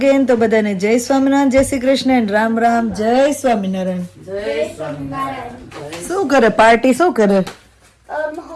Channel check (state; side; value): identical; both; correlation 1.00